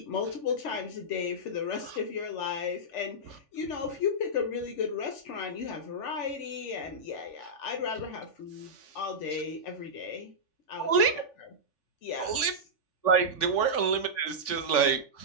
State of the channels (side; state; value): right; late; 3.4 ms